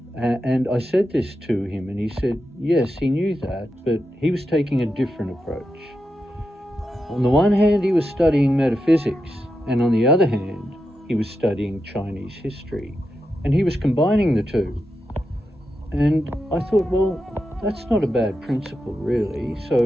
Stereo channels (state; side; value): normal; both; correlation 0.87